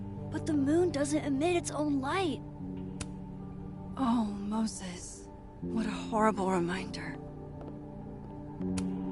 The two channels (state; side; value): identical; both; correlation 1.00